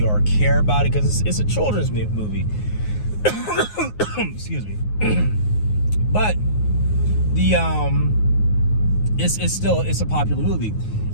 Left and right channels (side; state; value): right; late; 9.5 ms